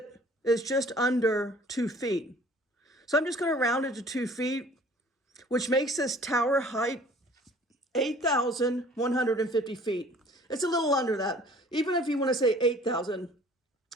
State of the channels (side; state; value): both; normal; correlation 0.51